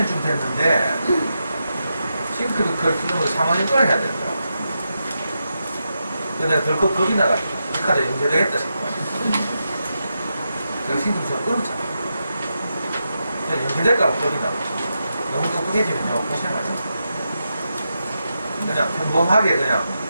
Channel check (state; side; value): inverted; both; correlation -0.86